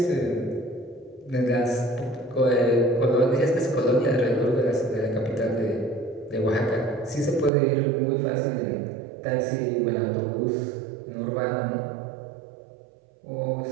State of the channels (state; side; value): drops out; left; at 7.5 s